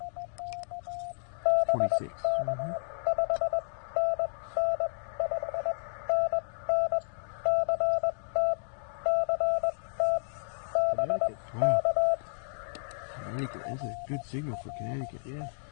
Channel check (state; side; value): silent; right; digital silence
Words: 26. Mm-hmm. Connecticut. Wow. Connecticut. That's a good signal for Connecticut. Yeah.